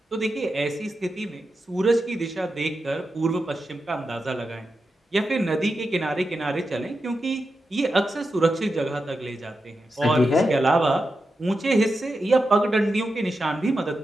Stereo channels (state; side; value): normal; both; correlation 0.89